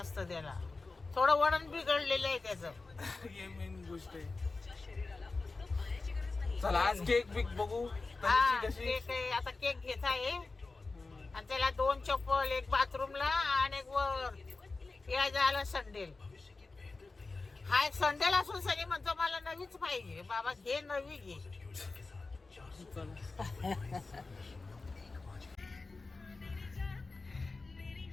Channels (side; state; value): right; quieter; 3.7 dB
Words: त्याला. थोडं वळण बिघडलेलं आहे त्याचं. हे मेन गोष्ट आहे. चला आज केक बिक बघू हा, तनिषी कशी. केक आहे. आता केक घेत आहे आणि त्याला 2 चप्पल, एक बाथरूमला आणि एक वर या झालं संडेल. हा एक संडेल असून सनी म्हणतो मला नवीच पाहिजे. बाबा घे नवी घे.